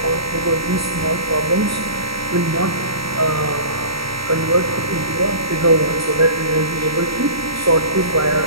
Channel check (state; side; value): late; left; 0.75 ms